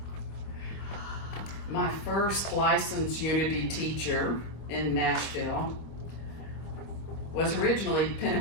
My first licensed Unity teacher in Nashville was originally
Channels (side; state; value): right; late; 25 ms